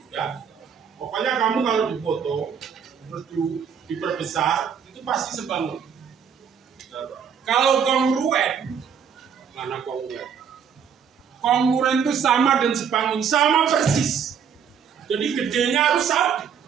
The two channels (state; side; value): quieter; left; 7.3 dB